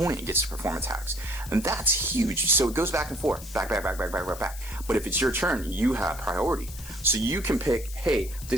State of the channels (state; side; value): noise; left; hiss, 15 dB below the sound